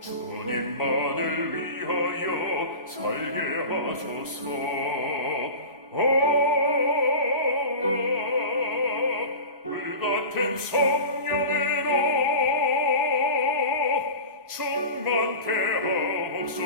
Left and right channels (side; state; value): both; inverted; correlation -0.32